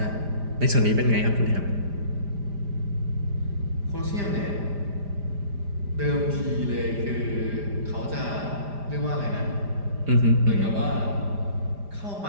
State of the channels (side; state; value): left; late; 5.0 ms